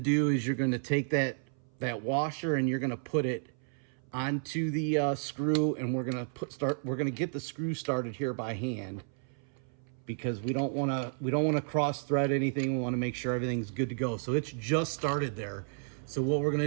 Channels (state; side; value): silent; left; 56 dB below the other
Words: is you're gonna take that washer and you're gonna put it onto the screw, and we're gonna get the screw started here by hand, because we don't want to cross thread anything. We want to make sure everything's good to go. So it's just started there. So what we're